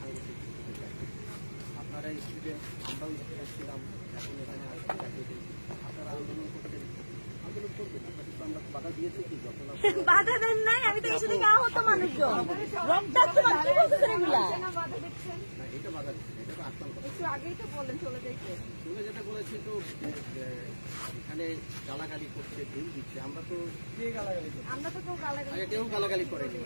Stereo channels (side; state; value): both; inverted; correlation -1.00